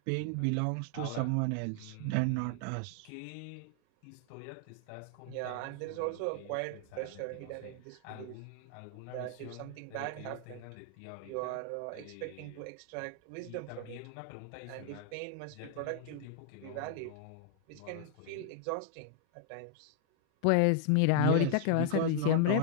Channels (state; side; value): different; both; correlation 0.00